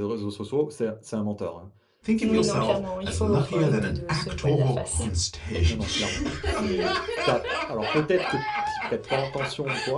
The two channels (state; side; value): identical; both; correlation 1.00